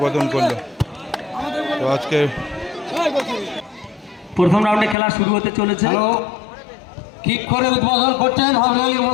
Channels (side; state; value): right; drops out; at 5.0 s